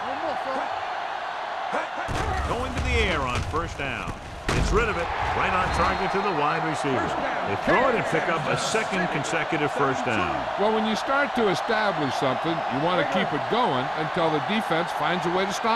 One more, son. Going to the air on first down. This Gets rid of it. Right on target to the wide receiver. They throw it and pick up a second consecutive first down. Well, when you start to establish something, you want to keep it going until the defense finds a way to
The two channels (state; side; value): identical; both; correlation 1.00